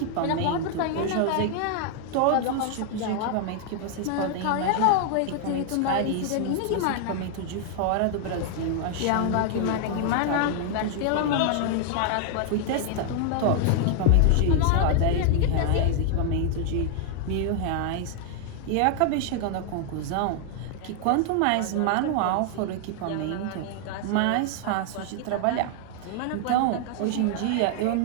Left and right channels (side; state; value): both; different; correlation 0.00